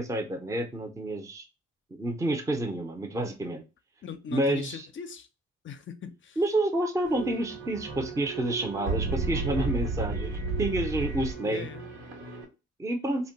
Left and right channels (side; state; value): both; normal; correlation 0.60